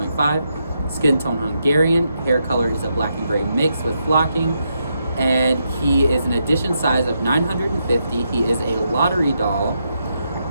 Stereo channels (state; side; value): inverted; both; correlation -0.81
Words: Skin tone Hungarian. Hair color is a black and gray mix with flocking. And he is an edition size of 950. He is a lottery doll.